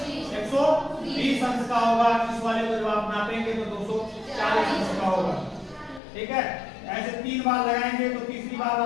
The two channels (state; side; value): drops out; right; at 6.0 s